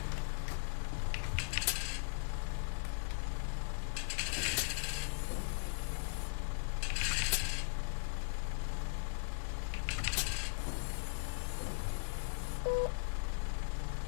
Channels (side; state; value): right; silent; 52 dB below the other